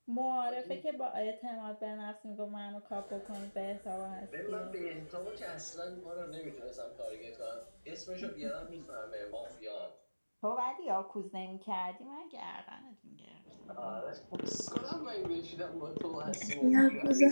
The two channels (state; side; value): inverted; both; correlation -1.00